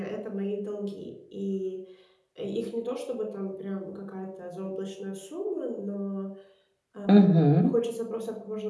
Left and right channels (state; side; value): identical; both; correlation 1.00